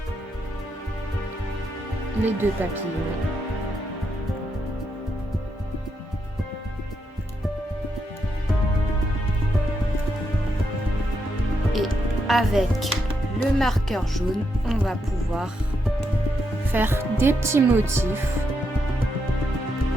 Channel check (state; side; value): normal; both; correlation 0.81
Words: les deux papillons. Et avec le marqueur jaune, on va pouvoir faire des petits motifs.